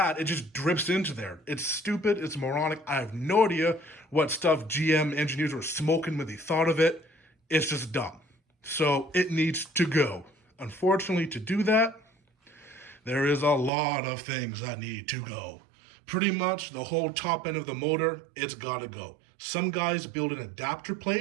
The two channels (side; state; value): left; drops out; at 13.7 s